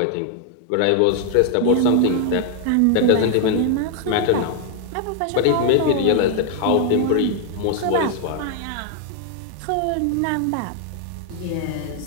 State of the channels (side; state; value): both; different; correlation 0.00